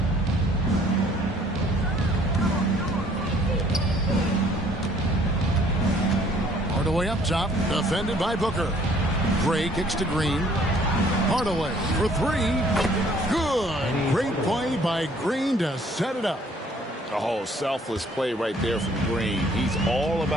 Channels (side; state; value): both; normal; correlation 0.59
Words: Hardaway up top, defended by Booker. Gray kicks to Green. Hardaway for three. Good. Great play by Green to set it up. Oh, selfless play right there from Green. He's all